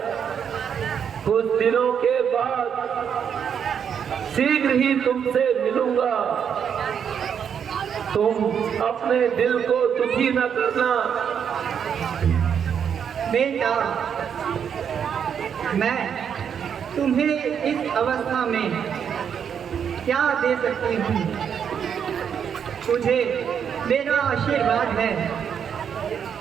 कुछ दिनों के बाद शीघ्र ही तुमसे मिलूंगा। तुम अपने दिल को दुखी न करना। बेटा, मैं तुम्हें इस अवस्था में क्या दे सकती हूँ? तुझे मेरा आशीर्वाद है।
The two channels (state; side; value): quieter; left; 7.8 dB